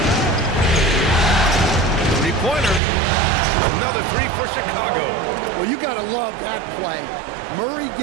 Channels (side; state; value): left; drops out; at 2.8 s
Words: Three-pointer. Another 3 for Chicago. Well, you got to love that play. Murray